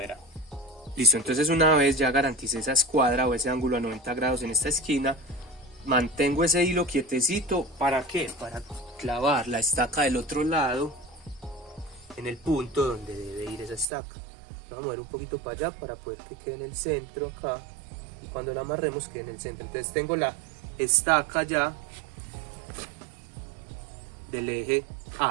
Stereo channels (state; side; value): drops out; left; at 13.9 s